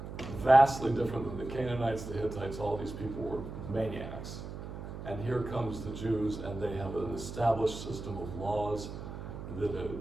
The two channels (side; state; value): right; noise; hum, 9 dB below the sound